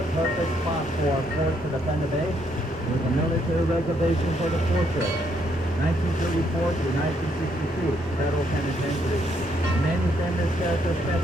perfect spot for a fort to defend the bay, with a military reservation for the fortress. 1934 to 1962, federal penitentiary. Many famous characters spent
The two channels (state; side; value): normal; both; correlation 0.72